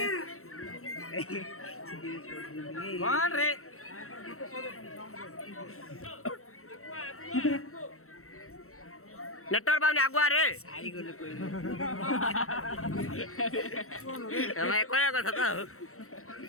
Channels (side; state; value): right; late; 0.63 ms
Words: कौन रे नेटवर्क बाबू आगुआ रे मैं कोया কথা তো